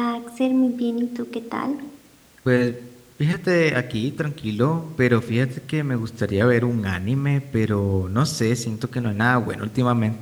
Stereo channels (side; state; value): both; identical; correlation 1.00